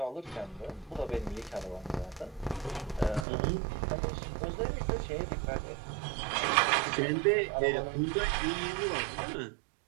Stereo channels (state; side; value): drops out; left; at 3.2 s